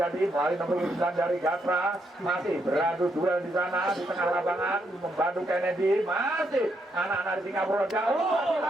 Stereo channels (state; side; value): normal; both; correlation 0.78